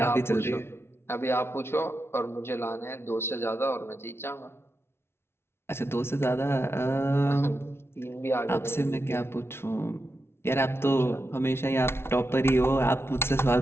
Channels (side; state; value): right; late; 0.12 ms